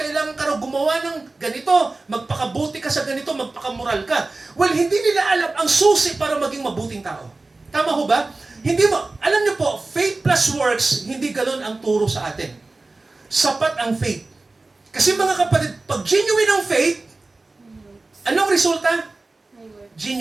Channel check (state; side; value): quieter; left; 3.3 dB